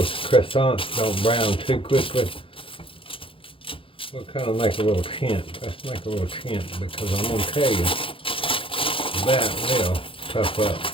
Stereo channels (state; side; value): late; right; 0.26 ms